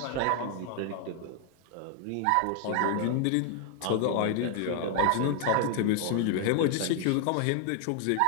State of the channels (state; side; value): different; both; correlation 0.00